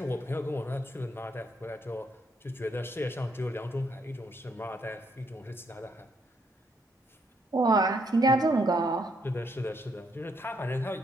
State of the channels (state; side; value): normal; both; correlation 0.74